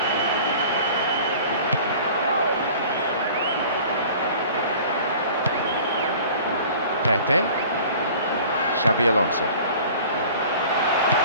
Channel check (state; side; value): inverted; both; correlation -0.45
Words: Pepe, Xabi Alonso,